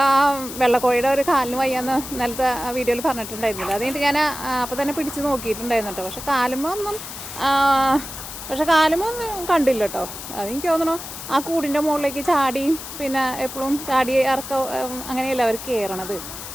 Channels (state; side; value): noise; left; hiss, 10 dB below the sound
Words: ആ വെള്ളക്കോഴിയുടെ ഒരു കാലിന് വയ്യാന്ന് ഇന്നലത്തെ വീഡിയോയിൽ പറഞ്ഞിട്ടുണ്ടായിരുന്നില്ല. അത് കഴിഞ്ഞിട്ട് ഞാൻ അപ്പോൾ തന്നെ പിടിച്ച് നോക്കിയിട്ടുണ്ടായിരുന്നു കേട്ടോ. പക്ഷെ കാലുമൊന്നും കണ്ടില്ല കേട്ടോ. അതെനിക്ക് തോന്നണു ആ കൂടിൻ്റെ മുകളിലേക്ക് ചാടിയും പിന്നെ എപ്പോഴും ചാടി അങ്ങനെയല്ല അവർ കയറണത്.